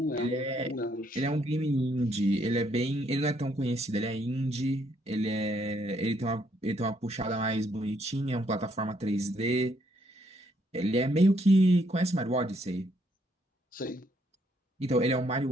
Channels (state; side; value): normal; both; correlation 0.71